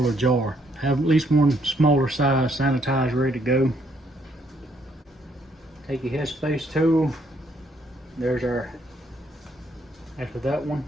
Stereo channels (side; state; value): both; normal; correlation 0.70